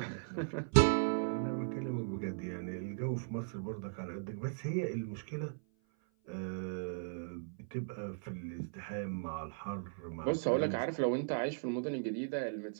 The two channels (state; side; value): silent; left; 53 dB below the other